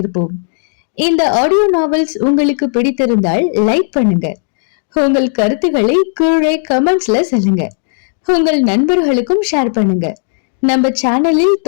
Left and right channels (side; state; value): right; silent; digital silence